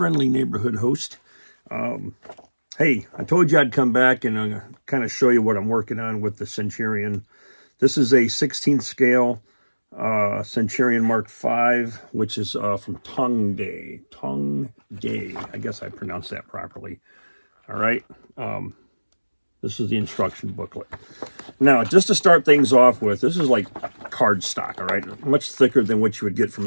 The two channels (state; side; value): inverted; both; correlation -1.00